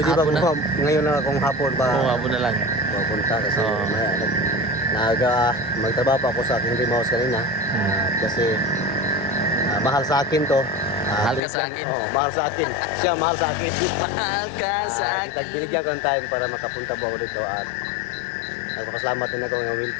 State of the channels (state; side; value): drops out; right; at 11.4 s